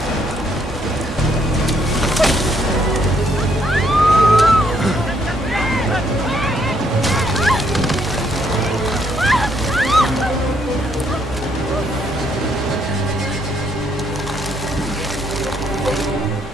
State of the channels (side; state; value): both; normal; correlation 0.71